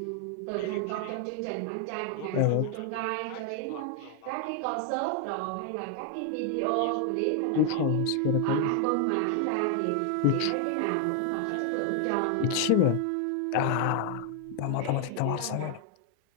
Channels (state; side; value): different; both; correlation 0.00